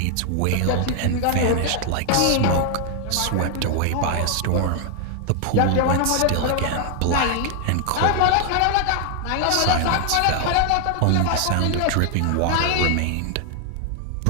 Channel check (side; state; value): both; different; correlation 0.00